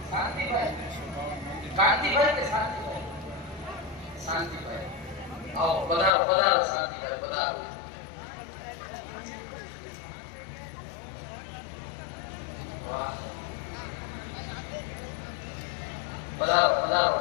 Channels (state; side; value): drops out; right; at 6.1 s